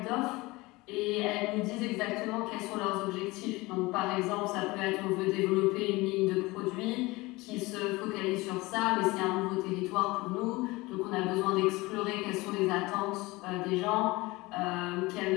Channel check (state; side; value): quieter; right; 22.0 dB